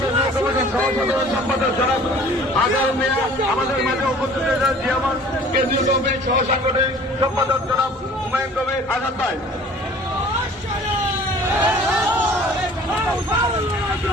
সম্পাদক জনাব আজহার মিয়া, আমাদের মাঝে উপস্থিত হয়েছেন জিয়ামান কেন্দ্রীয় কমিটির সহ সাংগঠনিক সম্পাদক জনাব হুমায়ুন কবির আজাদ ভাই।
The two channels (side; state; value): both; normal; correlation 0.49